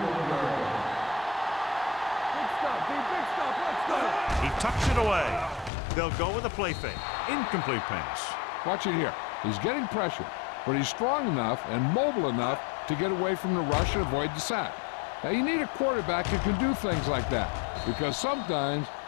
stop, D. Big stop. Let's go. He tucks it away. They'll go with a play fake. Incomplete pass. Watch it here. He's getting pressure, but he's strong enough and mobile enough to get away from the rush and avoid the sack. Now, you need a quarterback who can do things like that, because sometimes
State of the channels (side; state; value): right; drops out; at 5.7 s